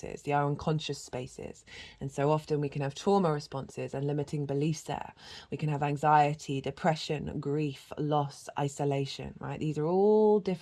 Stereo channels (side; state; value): both; identical; correlation 1.00